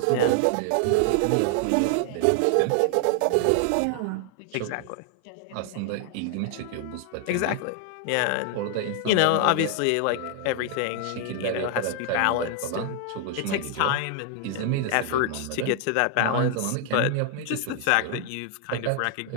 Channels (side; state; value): both; different; correlation 0.00